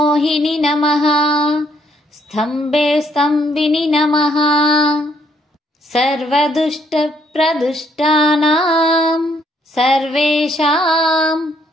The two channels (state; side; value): normal; both; correlation 0.69